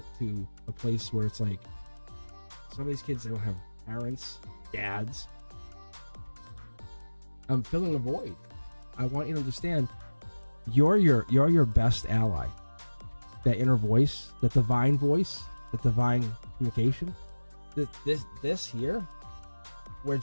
to a place where it's like, some of these kids, they don't have parents, dads. I'm filling a void. I want you to understand, you're your best ally. That inner voice, that divine communication. This here, we're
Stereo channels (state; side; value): inverted; both; correlation -1.00